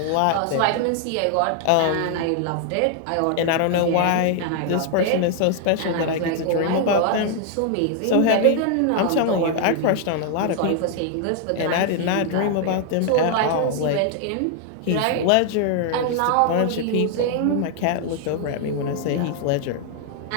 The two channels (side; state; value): both; different; correlation 0.00